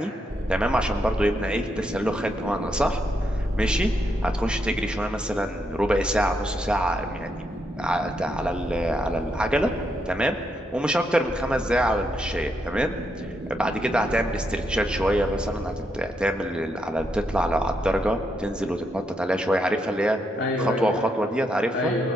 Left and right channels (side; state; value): both; normal; correlation 0.79